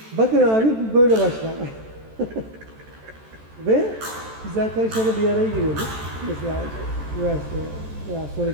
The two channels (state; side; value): late; left; 14 ms